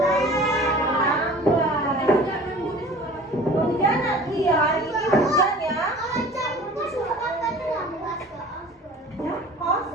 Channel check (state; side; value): normal; both; correlation 0.44